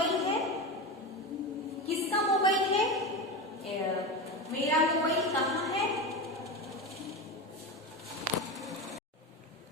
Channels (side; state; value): both; normal; correlation 0.21